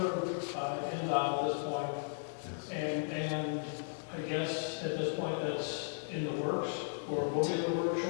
by Endowment at this point. And I guess at this point that's in the works, or will be in the works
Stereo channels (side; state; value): right; silent; 54 dB below the other